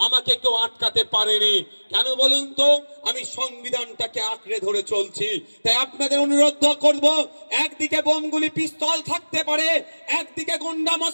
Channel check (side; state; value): both; inverted; correlation -1.00